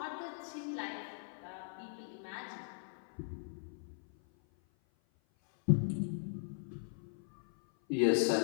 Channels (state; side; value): silent; right; 52 dB below the other